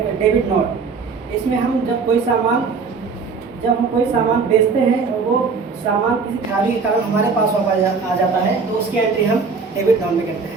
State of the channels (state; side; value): quieter; left; 4.9 dB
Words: डेबिट नोट। इसमें हम जब हम कोई सामान बेचते हैं और वो सामान किसी खराबी के कारण हमारे पास वापस आ जाता है तो उसकी एंट्री हम डेबिट नोट में करते